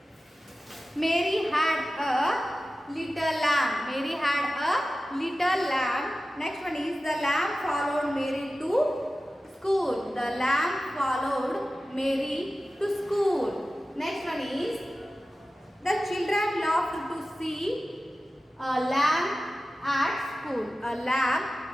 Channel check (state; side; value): normal; both; correlation 0.95